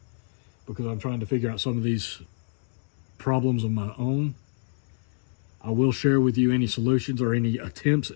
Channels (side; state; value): right; silent; digital silence